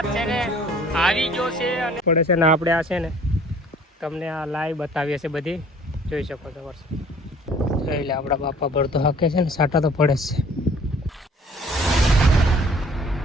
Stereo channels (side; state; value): both; normal; correlation 0.54